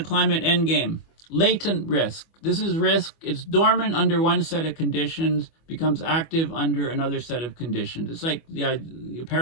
Climate Endgame: latent risk. This is risk. It's dormant under one set of conditions, becomes active under another set of conditions. It's like the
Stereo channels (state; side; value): late; right; 25 ms